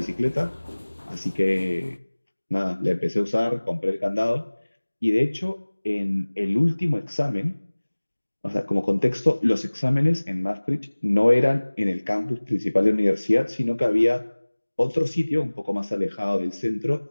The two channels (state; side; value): inverted; both; correlation -1.00